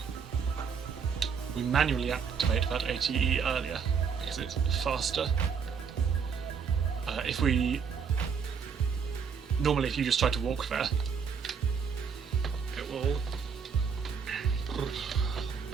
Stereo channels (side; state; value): left; quieter; 6.4 dB